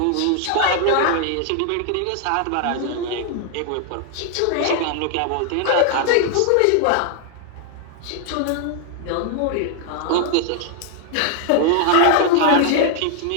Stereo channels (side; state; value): both; different; correlation 0.00